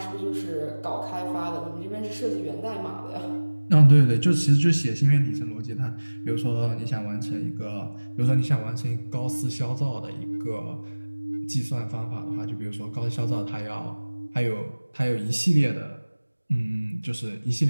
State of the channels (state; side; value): inverted; both; correlation -1.00